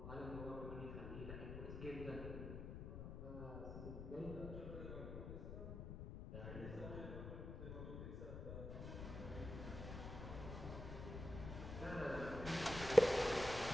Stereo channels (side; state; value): left; noise; rumble, 7 dB below the sound